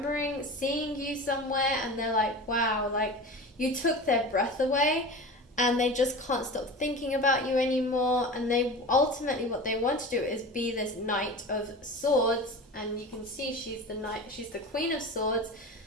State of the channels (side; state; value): both; normal; correlation 0.32